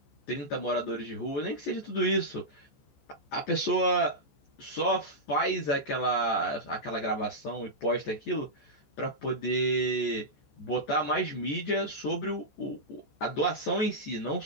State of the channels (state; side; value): late; right; 14 ms